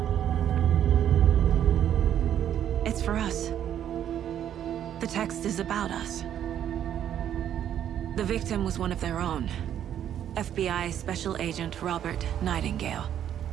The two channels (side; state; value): left; quieter; 10.2 dB